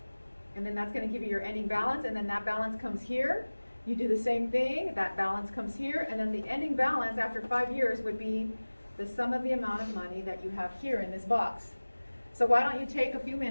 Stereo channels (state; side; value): inverted; both; correlation -1.00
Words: and then that's going to give you your ending balance, and then that balance comes here. You do the same thing, that balance comes here, and then the ending balance after 5 years would be the sum of the amount of money that you have here in this box. So why don't you take a few